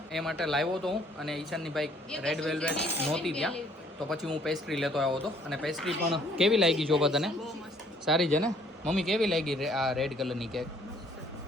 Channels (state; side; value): normal; both; correlation 0.61